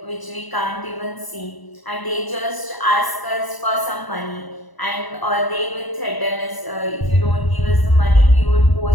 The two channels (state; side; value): late; right; 1.0 ms